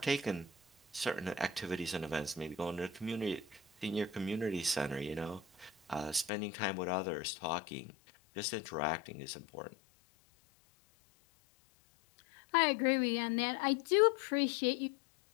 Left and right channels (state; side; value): drops out; right; at 6.3 s